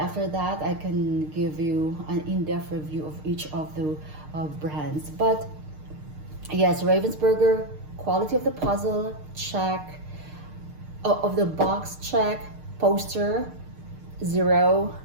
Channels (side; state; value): left; late; 6.6 ms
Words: that I can give you an in-depth review of each of the brands. But yes, Ravensburger, quality of the puzzle, check. Of the box, check. Poster, 0.